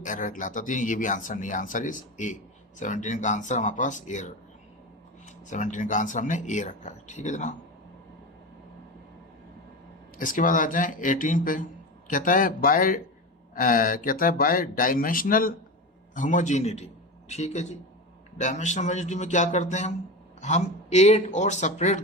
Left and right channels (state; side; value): normal; both; correlation 0.23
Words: एरर कहलाता है। तो ये भी आंसर नहीं है, आंसर इज ए। 17 का आंसर हमारे पास ए, 17 का आंसर हमने ए रखा है। ठीक है जनाब। इसके बाद आ जाएं 18 पे। कहता है बाय डायमेंशनल होमोजेनिटी। ठीक है जी। डायमेंशनल होमोजेनिटी में क्या करते हैं हम एड और सेपरेट